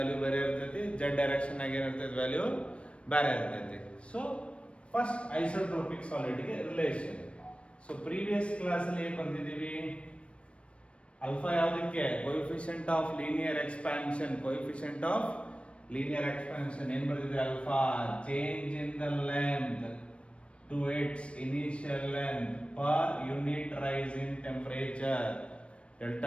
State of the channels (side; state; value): right; late; 0.060 ms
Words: ಬೇರೆ ಇರ್ತೈತಿ, ಝೆಡ್ ಡೈರೆಕ್ಷನ್ ಆಗಿ ಏನಿರ್ತೈತಿ ವ್ಯಾಲ್ಯೂ ಬೇರೆ ಇರ್ತೈತಿ. ಸೊ ಫಸ್ಟ್ ಐಸೋಟ್ರೋಪಿಕ್ ಸಾಲಿಡ್ಗೆ ರಿಲೇಷನ್. ಸೊ ಪ್ರೀವಿಯಸ್ ಕ್ಲಾಸ್ ಅಲ್ಲಿ ಏನ್ ಬಂದಿದ್ದೀವಿ? ಅಲ್ಫಾ ಯಾವುದಕ್ಕೆ? Coefficient of linear expansion. Coefficient of linear expansion ಏನ್ ಬರ್ತಿದ್ರೆ? Alpha change in the length to its initial length per unit rise in temperature.